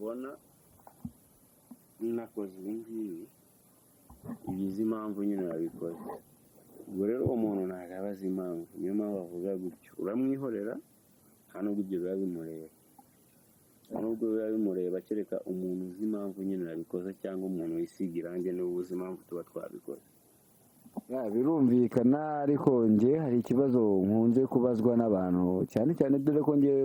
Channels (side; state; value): both; identical; correlation 1.00